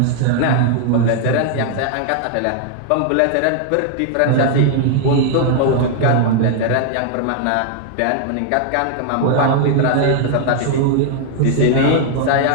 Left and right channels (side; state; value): both; different; correlation 0.00